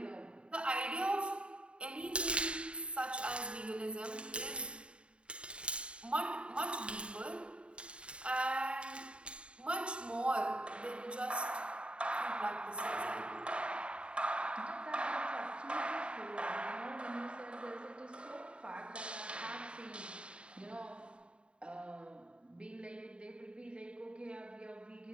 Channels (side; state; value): left; late; 0.056 ms